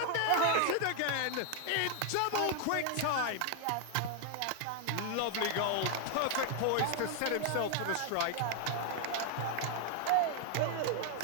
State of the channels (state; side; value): different; both; correlation 0.00